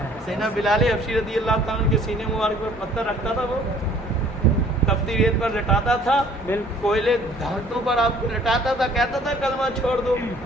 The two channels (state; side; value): normal; both; correlation 0.55